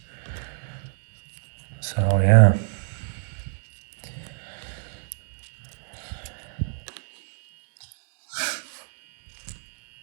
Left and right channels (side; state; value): left; silent; digital silence